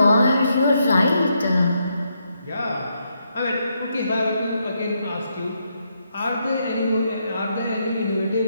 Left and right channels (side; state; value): both; inverted; correlation -0.79